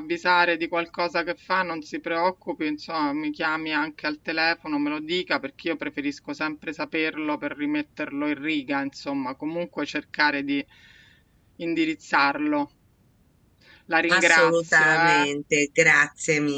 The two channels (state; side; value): identical; both; correlation 1.00